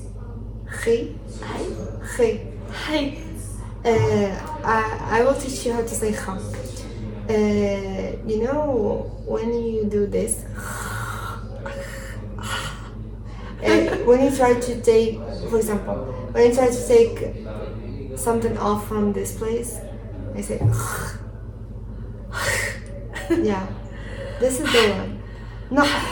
خي. Hi. خي. Hi. I will teach you how to say kha. You know when you do this, when you try to take, for example, when you try to take something off from this place, I say, yeah, this is the one. No,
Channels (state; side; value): identical; both; correlation 1.00